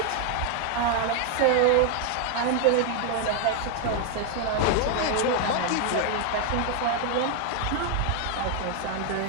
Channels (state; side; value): different; both; correlation 0.00